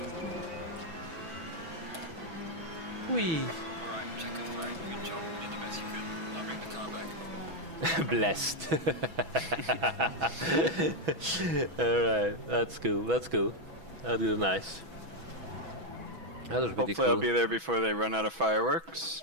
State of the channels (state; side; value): late; left; 6.1 ms